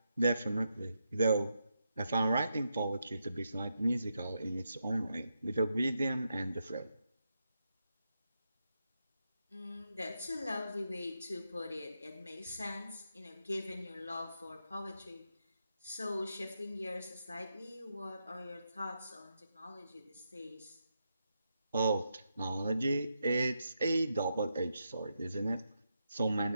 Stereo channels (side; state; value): both; inverted; correlation -0.84